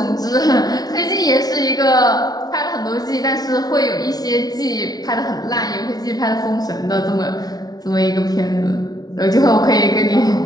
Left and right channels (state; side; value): late; right; 0.18 ms